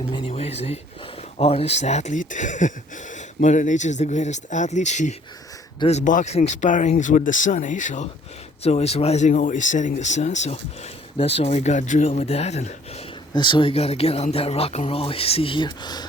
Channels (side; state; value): both; normal; correlation 0.58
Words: many ways, eh? Artist, athlete. Mother Nature is the greatest athlete. She does boxing sparrings with the sun, eh? So it's always rising, always setting the sun. So that's why we got drilled with that, and that's why we gotta get on that rock and roll. You see here,